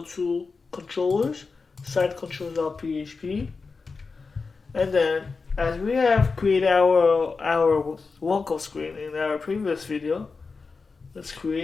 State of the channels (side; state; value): right; quieter; 4.5 dB